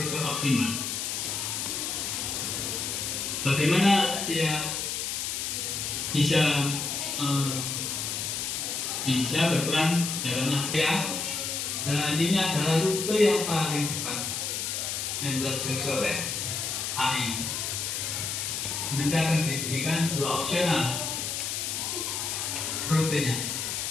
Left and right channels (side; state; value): left; noise; hiss, 2 dB below the sound